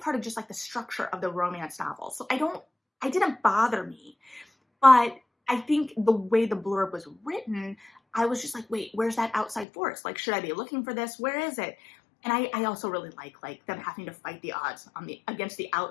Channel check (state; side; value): drops out; right; at 9.7 s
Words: of just like the structure of the romance novel. So I didn't bother me, but I think the way the blurb was written, I was just like, wait, where's that outside force? Like, should I be looking for this? Where is it? And I also really like them having to fight the odds against the